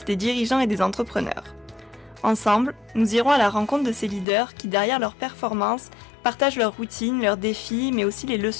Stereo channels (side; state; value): right; drops out; at 4.2 s